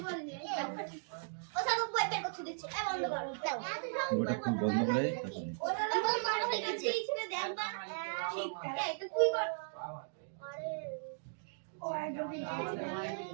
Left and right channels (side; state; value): left; silent; digital silence